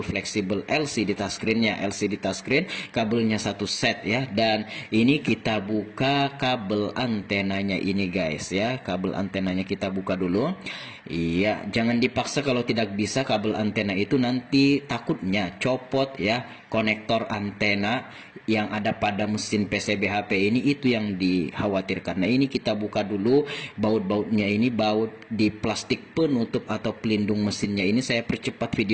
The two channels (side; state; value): both; identical; correlation 1.00